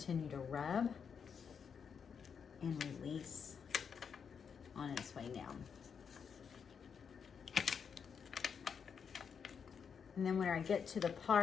to rub and release on its way down. And then when I get to the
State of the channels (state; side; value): quieter; right; 6.7 dB